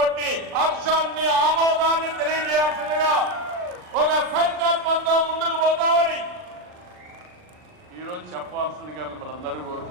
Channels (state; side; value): late; left; 39 ms